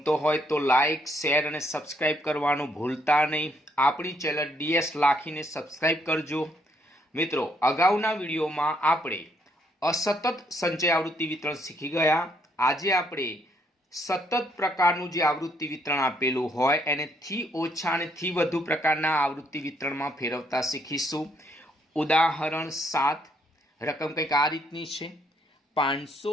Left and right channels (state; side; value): normal; both; correlation 0.71